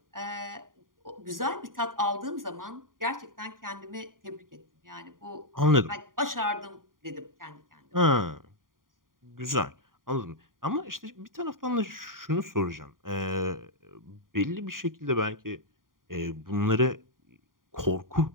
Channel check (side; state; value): left; late; 0.91 ms